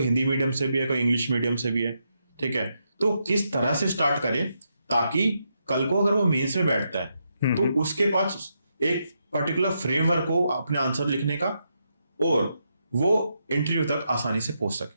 हिंदी मीडियम से भी है, कोई इंग्लिश मीडियम से भी है, ठीक है, तो किस तरह से स्टार्ट करें ताकि कल को अगर वो मेंस में बैठता है तो उसके पास एक पर्टिकुलर फ्रेमवर्क हो अपने आंसर लिखने का, और वो इंटरव्यू तक आसानी से पहुंच सके.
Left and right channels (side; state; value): both; inverted; correlation -0.82